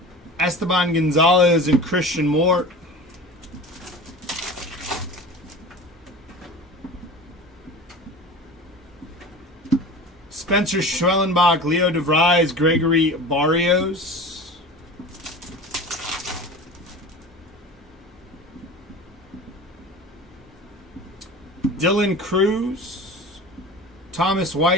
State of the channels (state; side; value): normal; both; correlation 0.36